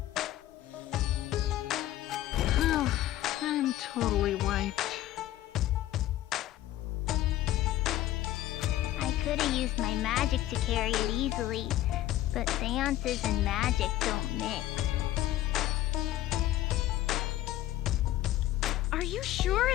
Oh, I'm totally wiped. I could have used my magic to carry it easily, but seances and magic don't mix. Are you sure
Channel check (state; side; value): quieter; right; 14.2 dB